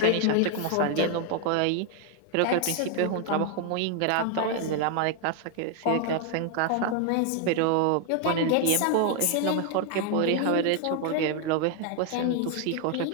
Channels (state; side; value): different; both; correlation 0.00